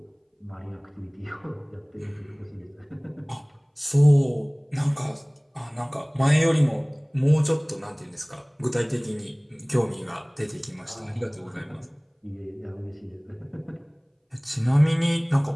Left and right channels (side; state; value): both; identical; correlation 1.00